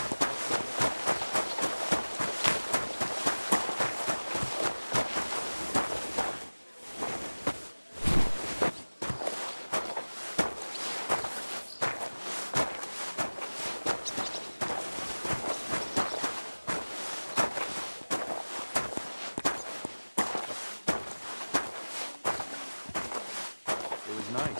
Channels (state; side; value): inverted; both; correlation -1.00